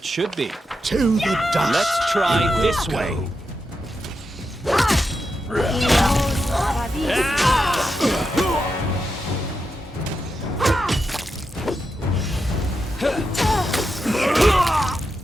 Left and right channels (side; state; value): both; normal; correlation 0.87